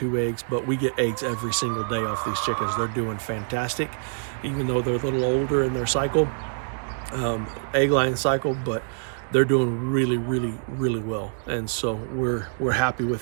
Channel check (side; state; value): left; silent; digital silence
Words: eggs, but we get eggs every single day off these chickens. They're doing fantastic, even though they're a little older in their cycle, egg laying cycle, but they're doing really, really, really well. And so we're happy